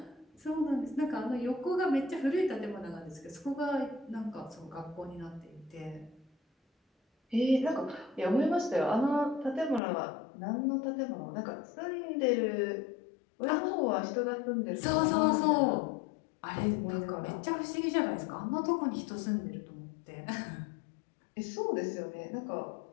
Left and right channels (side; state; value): right; drops out; at 9.8 s